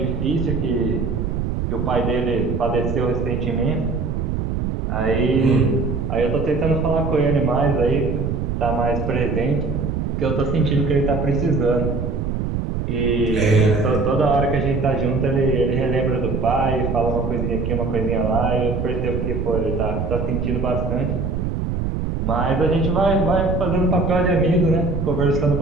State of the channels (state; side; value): noise; right; rumble, 2 dB below the sound